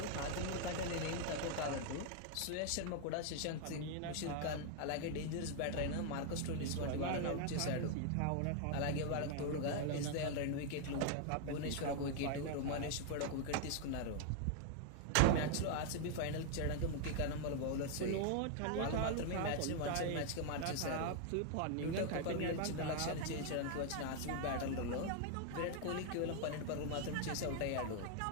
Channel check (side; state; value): both; different; correlation 0.00